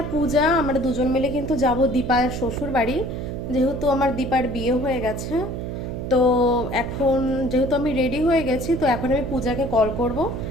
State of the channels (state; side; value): noise; right; hum, 5 dB below the sound